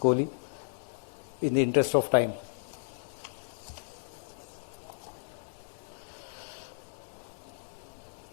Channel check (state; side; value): silent; right; digital silence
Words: in the interest of time.